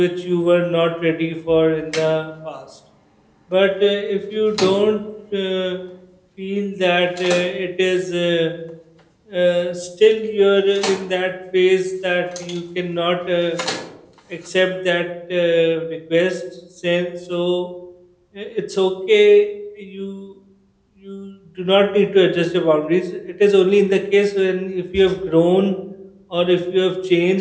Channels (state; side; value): identical; both; correlation 1.00